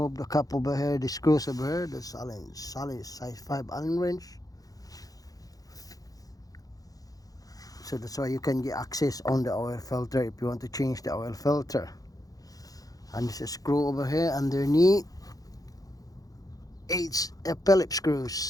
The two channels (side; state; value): right; late; 0.17 ms